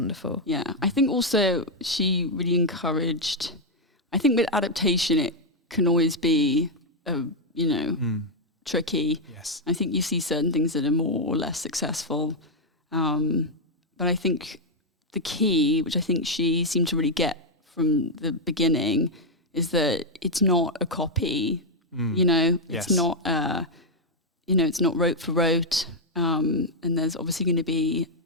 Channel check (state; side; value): normal; both; correlation 0.00